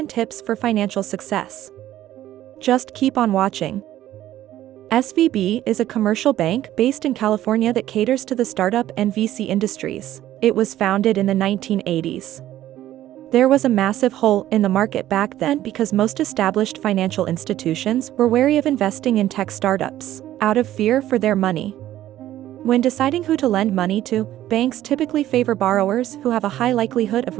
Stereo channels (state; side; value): quieter; left; 13.3 dB